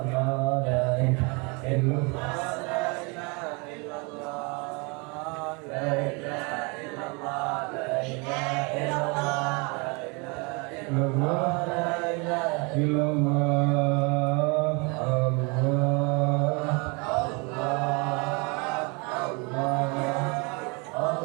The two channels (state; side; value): quieter; left; 30.5 dB